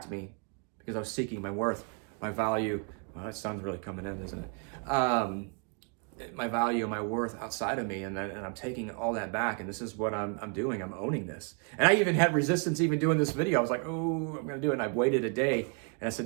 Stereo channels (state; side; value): quieter; left; 36.3 dB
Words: me because I was seeking my worth, my value. Well, that sounds really coming in, isn't it? My value, my worth outside of me, and I'm taking all that back, and this is what I'm doing. I'm owning this, and I even had resistance even doing this video. I was like, oh, I'm gonna do it, and I waited a day, and I